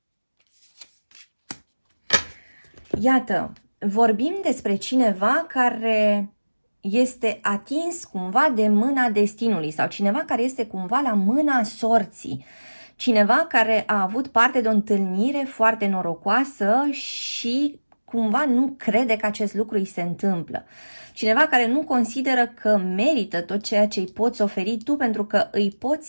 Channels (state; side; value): inverted; both; correlation -1.00